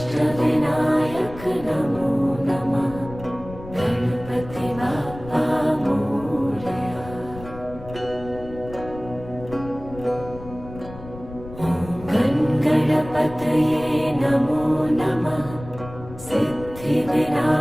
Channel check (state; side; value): noise; left; rumble, 15 dB below the sound